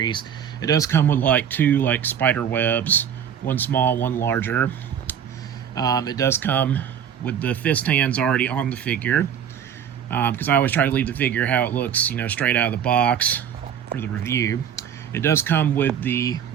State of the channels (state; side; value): quieter; left; 8.6 dB